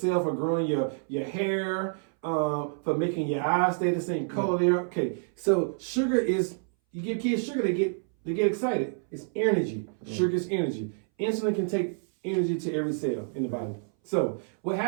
for growing your hair, for making your eyes stay the same color there. Okay, so sugar is, you give kids sugar, they get excited. It's energy. Sugar is energy. Insulin can take energy to every cell in the body. So what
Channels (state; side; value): silent; left; 59 dB below the other